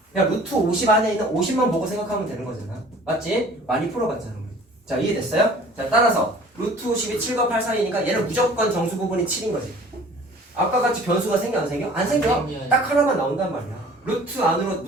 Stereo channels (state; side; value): normal; both; correlation 0.49